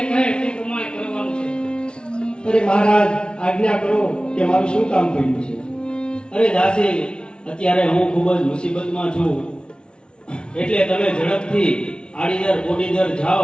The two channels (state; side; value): late; right; 0.055 ms